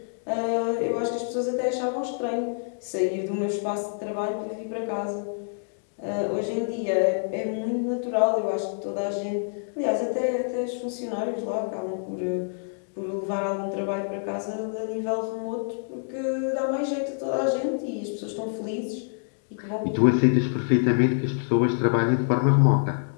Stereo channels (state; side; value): silent; right; digital silence